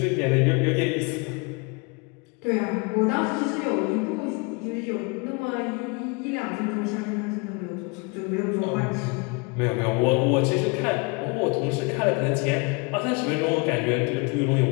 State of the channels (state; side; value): quieter; right; 30.2 dB